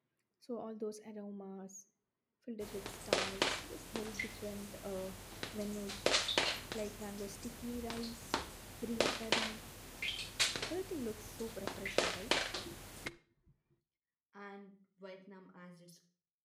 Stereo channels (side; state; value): both; identical; correlation 1.00